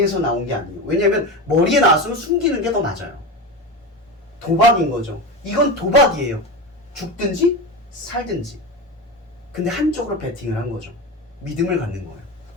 나온 게 아니에요. 왜냐하면 머리에 나왔으면 숨기는 게 더 맞아요. 도박인 거죠. 이건 도박이에요. 죽든지 살든지. 근데 한쪽으로 베팅을 한 거죠. 믿음을 갖는 거예요.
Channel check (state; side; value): normal; both; correlation 0.23